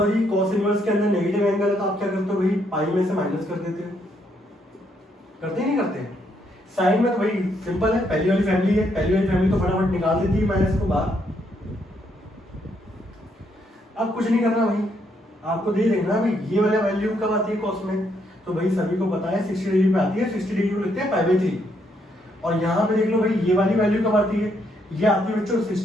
कॉस इनवर्स के अंदर नेगेटिव एंगल है तो आप क्या करते हो भाई, पाई में से माइनस कर देते हो, करते ही नहीं करते। साइन में तो भाई सिंपल है, पहली वाली फैमिली है, पहली वाली फैमिली तो फटाफट निकाल देती है माइनस को बाहर। अब कुछ नहीं करना भाई, आपको दे देखना भाई ये वाला वैल्यू कब आती है कॉस में, तो भाई सभी को पता है 60 डिग्री पे आती है, 60 डिग्री को लिखते हैं π/3। और यहाँ पे देख लो भाई ये वाली वैल्यू कब आती है, ये आती है बच्चों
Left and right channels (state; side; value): normal; both; correlation 0.74